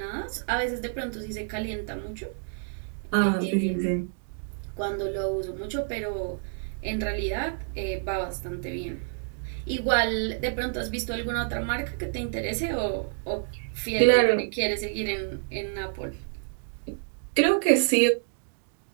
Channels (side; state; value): left; silent; digital silence